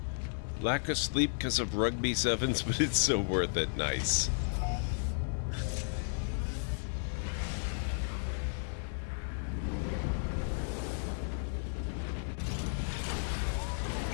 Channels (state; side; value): silent; right; digital silence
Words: Lack of sleep because of rugby sevens, but it's so worth it. Nice.